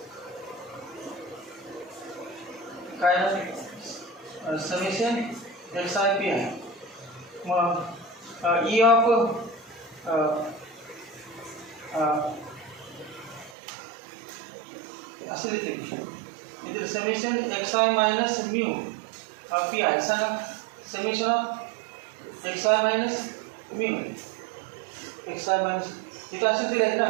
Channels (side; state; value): left; drops out; at 13.6 s